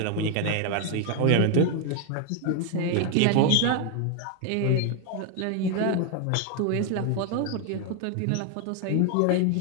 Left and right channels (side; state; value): both; different; correlation 0.00